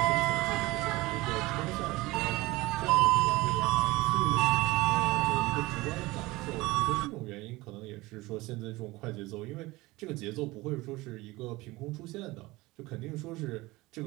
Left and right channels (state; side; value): quieter; left; 20.7 dB